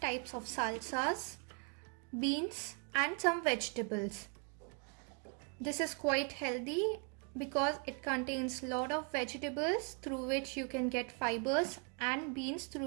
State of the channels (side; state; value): left; quieter; 34.8 dB